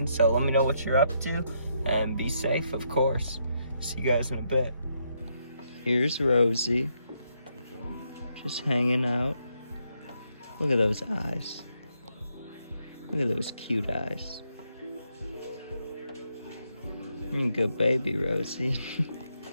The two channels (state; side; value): inverted; both; correlation -0.77